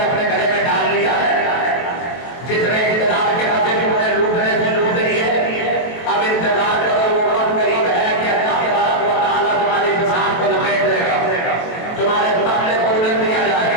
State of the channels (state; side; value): late; right; 23 ms